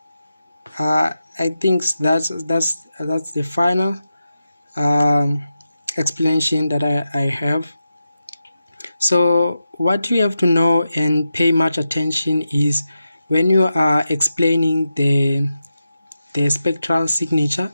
I think that's the final explanation that I have. So what you have to know and pay much attention is when you are explaining the spectral signature,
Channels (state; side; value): inverted; both; correlation -0.90